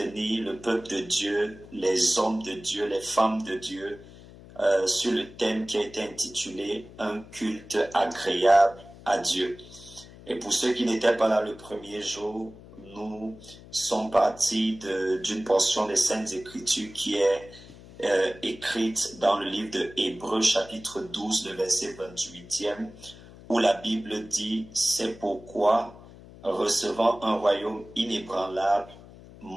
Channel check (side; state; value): left; noise; hum, 19 dB below the sound